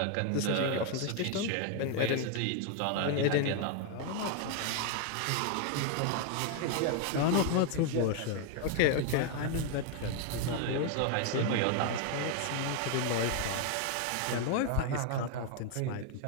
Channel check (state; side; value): different; both; correlation 0.01